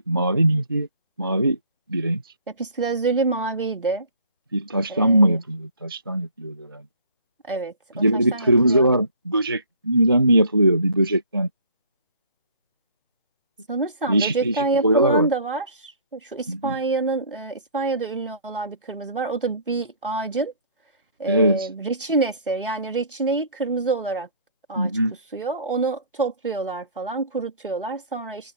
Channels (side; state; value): both; inverted; correlation -0.54